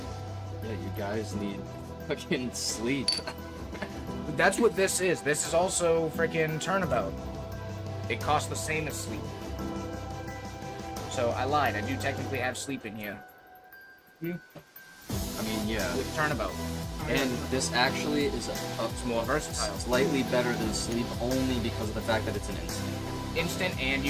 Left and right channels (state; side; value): identical; both; correlation 1.00